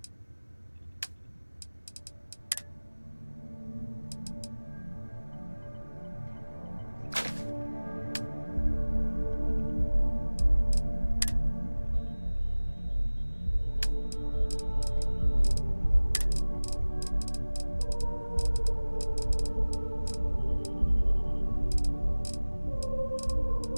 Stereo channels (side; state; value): both; inverted; correlation -1.00